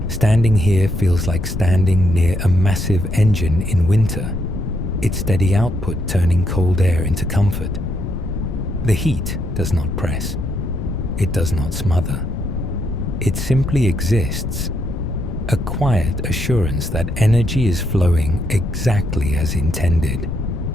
Standing here feels like standing near a massive engine in winter, its steady output turning cold air into comfort. The heat does not press. It does not smother. It simply exists, a quiet assurance that energy is flowing exactly as intended.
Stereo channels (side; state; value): left; noise; rumble, 4 dB below the sound